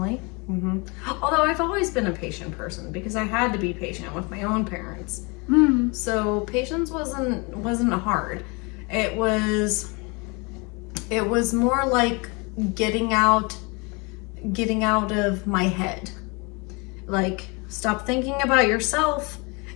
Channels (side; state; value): right; quieter; 29.3 dB